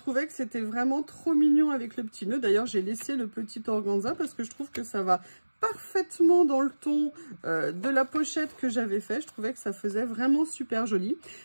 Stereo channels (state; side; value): inverted; both; correlation -1.00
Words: que c'était vraiment trop mignon avec le petit nœud. D'ailleurs, j'ai laissé le petit organza parce que je trouve que ça va parfaitement dans le ton de la pochette que j'avais fait. Je trouvais que ça faisait vraiment super joli.